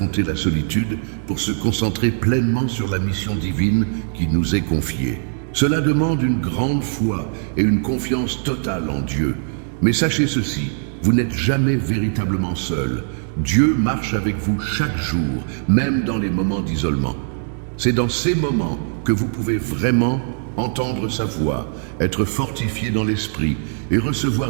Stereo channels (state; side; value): silent; left; digital silence